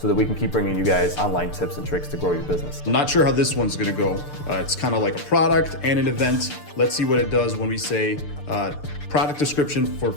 that we can keep bringing you guys online tips and tricks to grow your business. I'm not sure how this one's gonna go. It's kind of like a product and an event. Let's see what it does when we say product description for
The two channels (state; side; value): late; right; 6.8 ms